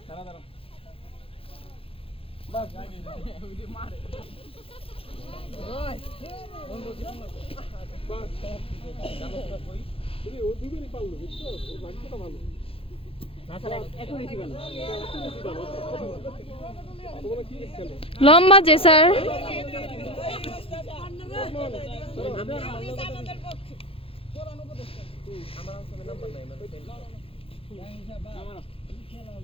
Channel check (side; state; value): right; late; 0.27 ms